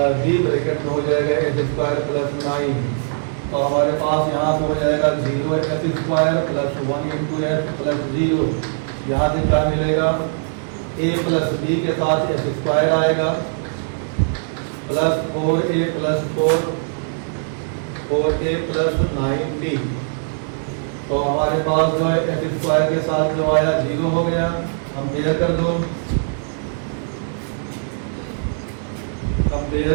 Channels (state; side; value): silent; left; digital silence